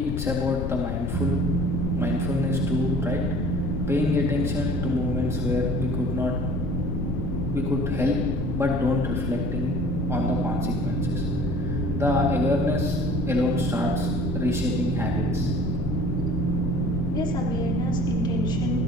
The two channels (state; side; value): noise; left; rumble, 2 dB below the sound